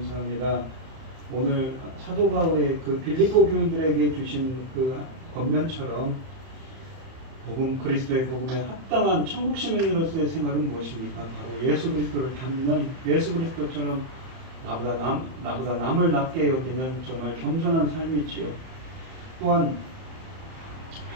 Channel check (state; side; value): late; left; 31 ms